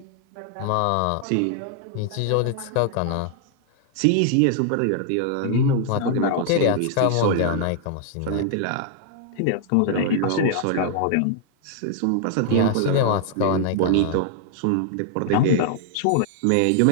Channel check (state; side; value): different; both; correlation 0.00